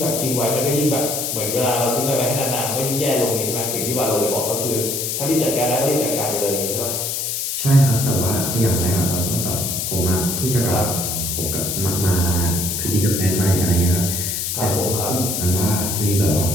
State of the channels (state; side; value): noise; left; hiss, 2 dB below the sound